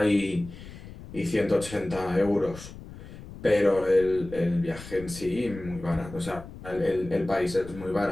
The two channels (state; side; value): noise; left; rumble, 15 dB below the sound